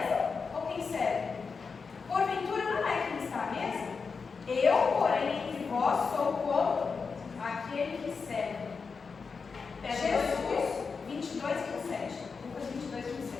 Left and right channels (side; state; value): right; quieter; 5.1 dB